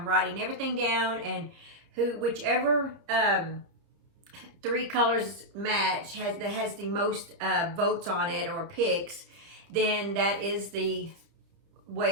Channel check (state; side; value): late; left; 30 ms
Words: writing everything down, and whichever 3 colors match that has the most votes on it or picks, then that is the